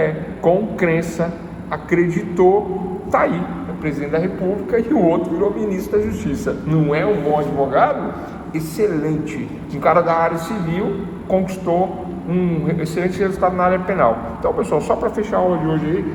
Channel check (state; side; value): identical; both; correlation 1.00